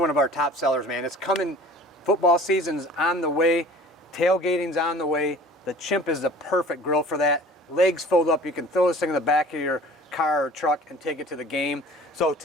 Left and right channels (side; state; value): both; normal; correlation 0.46